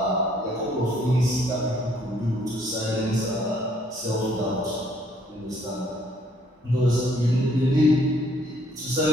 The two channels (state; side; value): normal; both; correlation 0.65